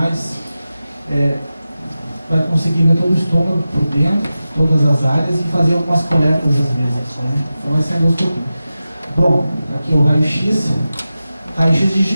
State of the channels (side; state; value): both; inverted; correlation -0.94